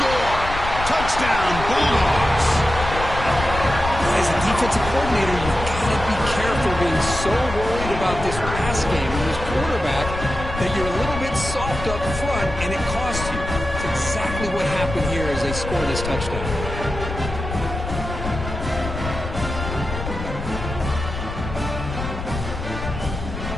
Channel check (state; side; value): noise; left; rumble, 7 dB below the sound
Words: Touchdown, Bulldogs. As a defensive coordinator, you've got to be careful being so worried about this pass game and this quarterback that you're a little bit soft up front and it costs you. It's exactly what happened here as they score this touchdown.